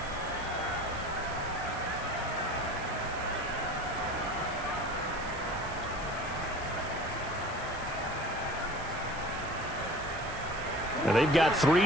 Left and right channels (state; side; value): noise; right; hiss, 16 dB below the sound